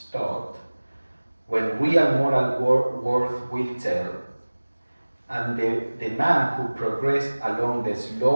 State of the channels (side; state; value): both; inverted; correlation -1.00